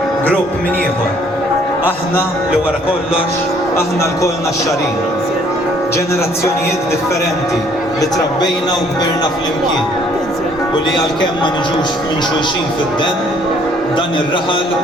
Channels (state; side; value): normal; both; correlation 0.62